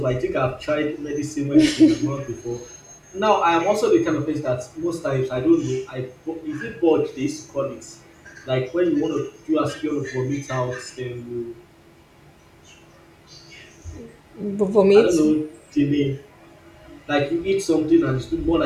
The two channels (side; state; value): both; identical; correlation 1.00